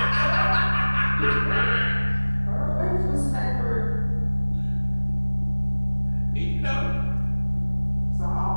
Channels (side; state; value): both; inverted; correlation -1.00